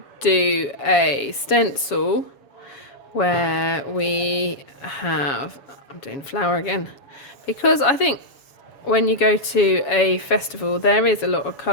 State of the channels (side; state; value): right; late; 7.3 ms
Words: do a stencil where we have, I'm doing flower again, because I think when you go to a festival, there is a lot of